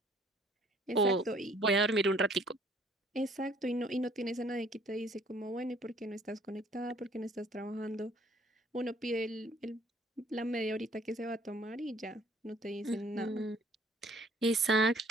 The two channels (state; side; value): normal; both; correlation 0.59